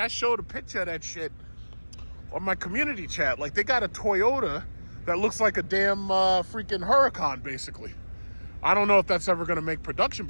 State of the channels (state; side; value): inverted; both; correlation -1.00